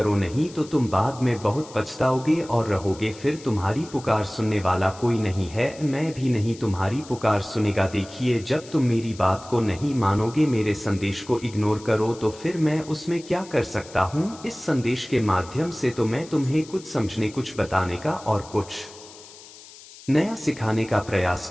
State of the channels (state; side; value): noise; left; hiss, 19 dB below the sound